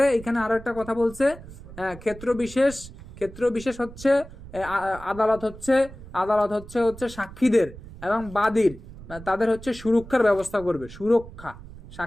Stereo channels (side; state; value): right; noise; rumble, 16 dB below the sound